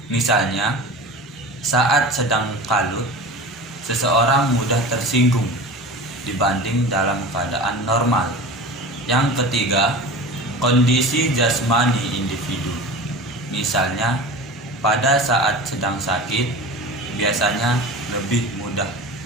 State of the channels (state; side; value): normal; both; correlation 0.34